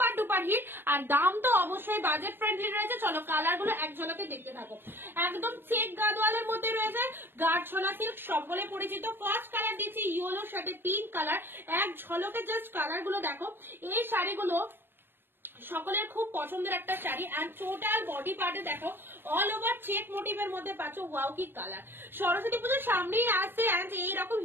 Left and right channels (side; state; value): left; late; 0.10 ms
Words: ডুপার হিট। আর দাম তো অবশ্যই বাজেট ফ্রেন্ডলি রয়েছে। চলো কালার গুলো এক ঝলকে দেখতে থাকো। একদম চেক গাডোয়ালের মধ্যে রয়েছে গাঢ়ছলা সিল্ক, সকলে পরিচিত। ফার্স্ট কালার দিচ্ছি ইয়েলোর সাথে পিঙ্ক কালার। এক ঝলকে জাস্ট কালার গুলো দেখো। এই শাড়িগুলো সকলের খুব পছন্দের একটা শাড়ি। এন্ড টোটাল বডি পার্টে দেখো অল ওভার চেক মোটিভের মধ্যে পাচ্ছ। ওয়াও কি কালার! সরস্বতী পুজোর সামনেই আসছে এন্ড এইরকম